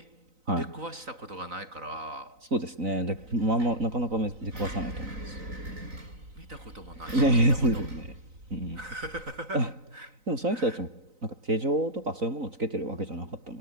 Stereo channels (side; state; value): left; late; 3.9 ms